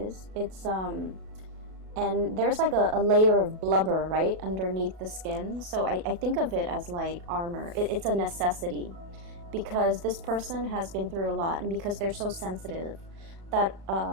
It's and there's like a layer of blubber right underneath the skin. So I think of it as like armor. It's a necessity, because this person has been through a lot, and because they're so sensitive, that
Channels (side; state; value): left; late; 37 ms